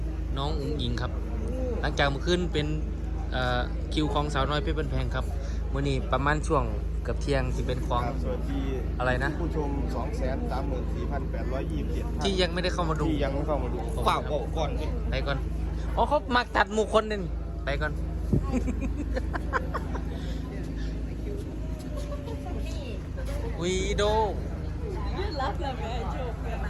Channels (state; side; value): identical; both; correlation 1.00